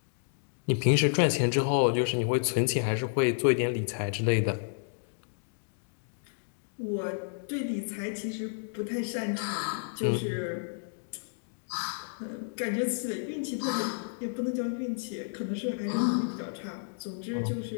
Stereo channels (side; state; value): right; silent; digital silence